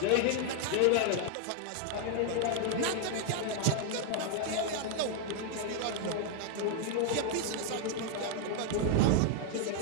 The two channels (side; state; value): both; different; correlation 0.00